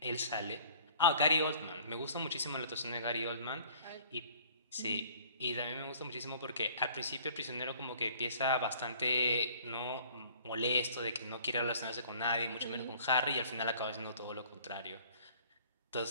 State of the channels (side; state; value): both; inverted; correlation -0.52